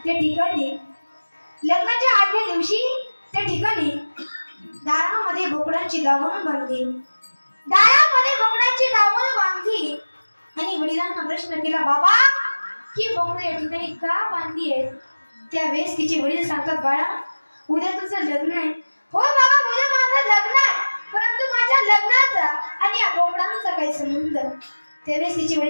त्या ठिकाणी दारामध्ये बोकडांची दावण बांधली. आणि वडिलांना प्रश्न केला, बाबा ही बोकडं या ठिकाणी का बांधली आहे? त्यावेळेस तिचे वडील सांगतात, बाळा उद्या तुझं लग्न आहे. हो बाबा, उद्या माझं लग्न आहे, परंतु माझ्या लग्नाचा आणि या बोकडांचा काही संबंध? त्यावेळेस तिचे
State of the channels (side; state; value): both; inverted; correlation -1.00